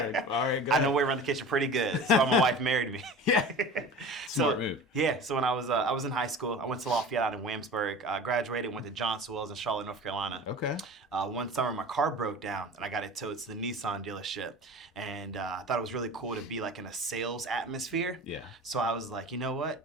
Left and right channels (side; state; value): both; normal; correlation 0.37